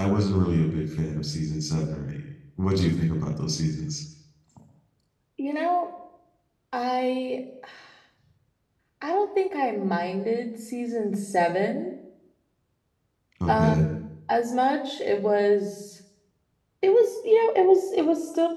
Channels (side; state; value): both; identical; correlation 1.00